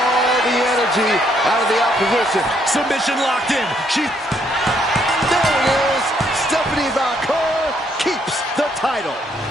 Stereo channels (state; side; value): normal; both; correlation 0.71